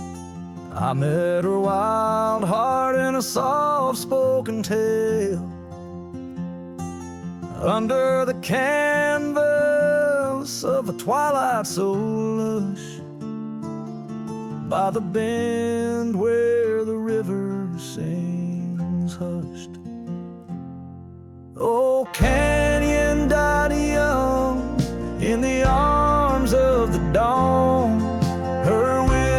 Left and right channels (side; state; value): both; identical; correlation 1.00